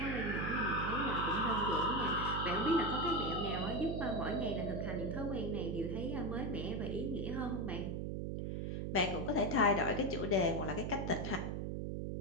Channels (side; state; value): right; noise; hum, 3 dB below the sound